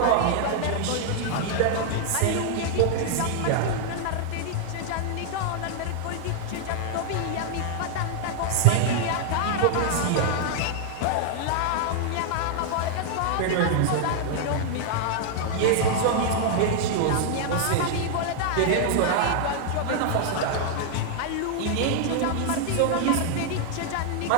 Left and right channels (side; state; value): both; different; correlation -0.01